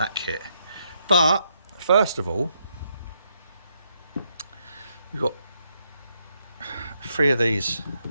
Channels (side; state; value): both; inverted; correlation -0.78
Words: kit. But first of all, we've got 3 of these